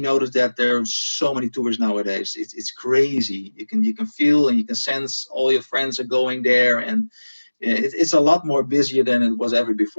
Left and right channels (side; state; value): both; inverted; correlation -1.00